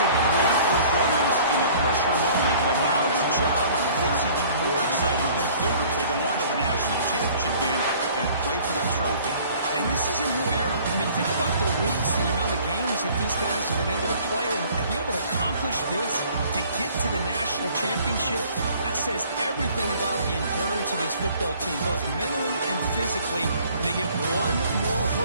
a great performance in a pressure moment, but now the job gets even more exciting, even bigger as they go on to the national championship game and play for that trophy. And this is a new era. I mean, think about the weeks, the amount of games that these guys have been able to play and be able to accomplish this to get to the national championship. That says everything about the endurance of this football team, both mentally and physically. And they get one more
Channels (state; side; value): inverted; both; correlation -0.53